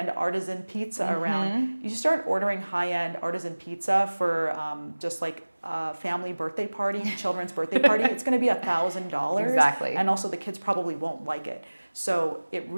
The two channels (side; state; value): both; inverted; correlation -1.00